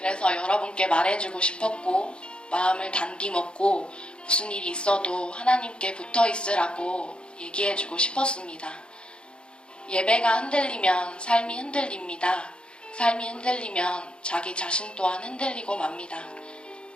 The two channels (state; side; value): late; right; 0.054 ms